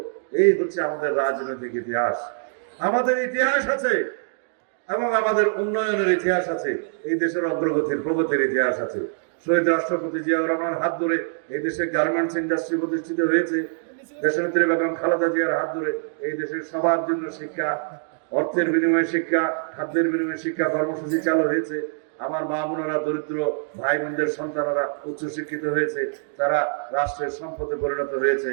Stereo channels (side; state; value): left; silent; digital silence